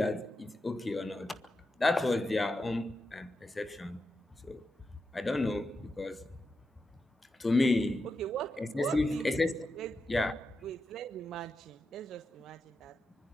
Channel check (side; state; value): both; normal; correlation 0.88